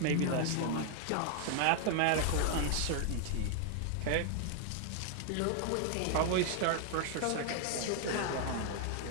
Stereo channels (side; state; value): both; different; correlation 0.00